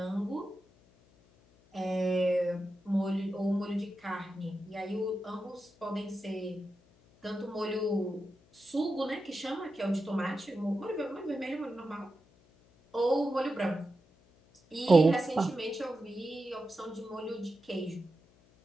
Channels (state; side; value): noise; left; hum, 30 dB below the sound